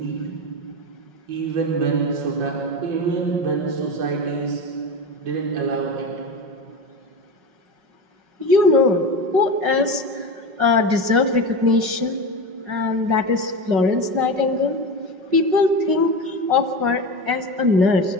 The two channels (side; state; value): left; late; 5.4 ms